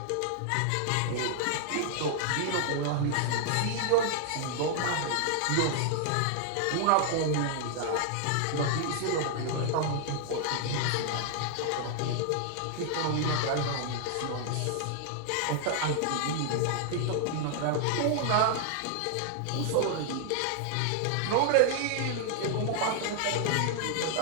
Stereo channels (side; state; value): both; different; correlation 0.00